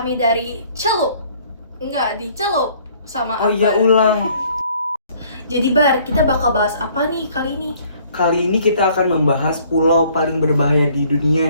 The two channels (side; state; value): both; inverted; correlation -0.59